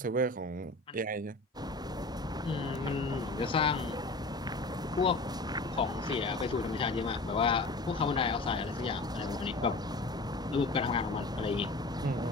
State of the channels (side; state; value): right; quieter; 3.1 dB